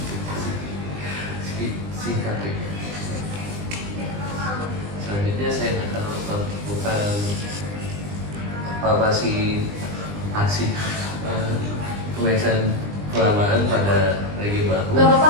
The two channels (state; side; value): late; left; 20 ms